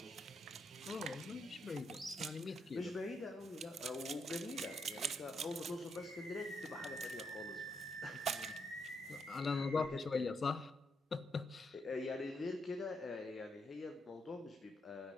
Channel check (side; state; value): both; normal; correlation 0.78